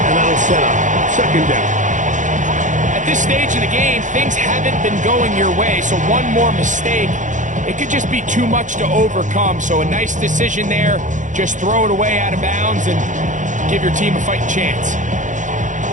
and that'll set up 2nd down. At this stage of the game, things haven't been going your way, so one more mistake, it could just be too much to overcome. So a nice decision there, just throw it away out of bounds and give your team a fighting chance.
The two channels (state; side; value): late; left; 0.36 ms